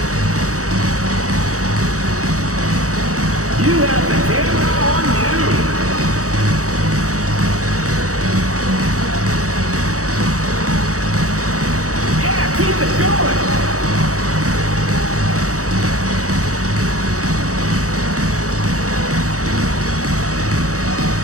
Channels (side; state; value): left; late; 0.65 ms